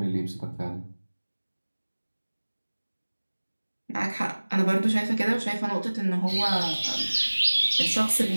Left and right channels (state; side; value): inverted; both; correlation -1.00